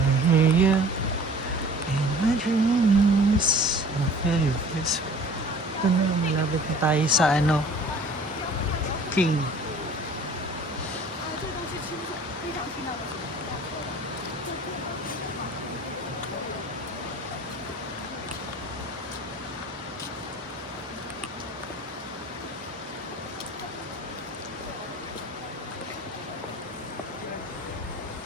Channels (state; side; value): normal; both; correlation 0.47